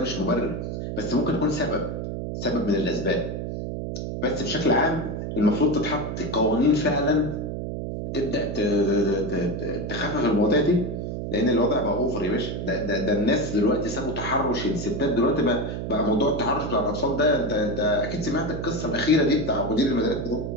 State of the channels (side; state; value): right; noise; hum, 5 dB below the sound